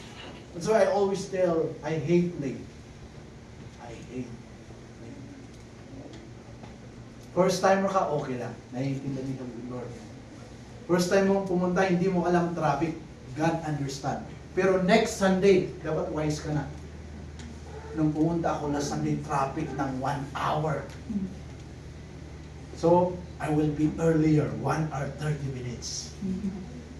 That's why I always tell, I hate late. I hate late. First timer ka, okay lang. Naiintindihan ka ng Lord. First time mo pumunta, hindi mo alam traffic. God understand. Pero next Sunday, dapat wise ka na. Nung pumunta ako last Sunday, traffic ng 1 hour. So, I will be earlier, 1 hour 30 minutes.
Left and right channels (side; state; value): both; identical; correlation 1.00